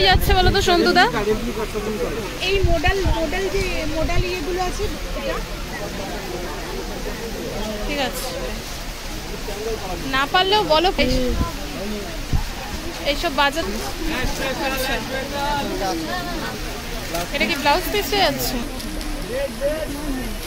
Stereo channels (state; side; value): identical; both; correlation 1.00